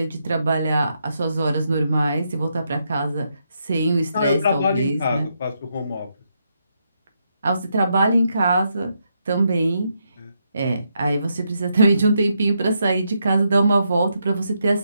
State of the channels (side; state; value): both; inverted; correlation -0.80